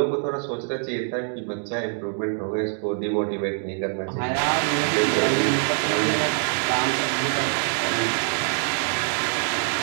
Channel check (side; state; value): left; silent; 56 dB below the other